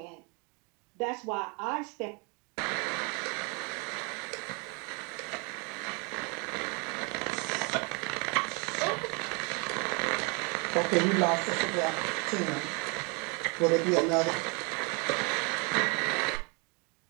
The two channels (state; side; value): quieter; left; 32.7 dB